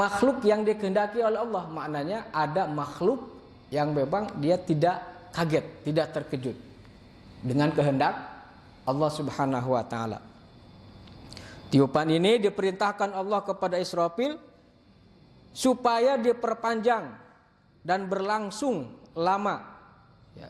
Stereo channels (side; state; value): both; identical; correlation 1.00